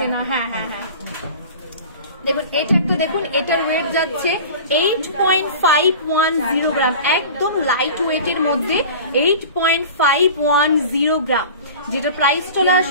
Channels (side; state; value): both; inverted; correlation -0.38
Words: না। হ্যাঁ হ্যাঁ হ্যাঁ, দেখুন এটা একটা, দেখুন এটার ওয়েট যাচ্ছে 8.510 গ্রাম, একদম লাইট ওয়েটের মধ্যে 8.510 গ্রাম, যেটা প্রাইস চলে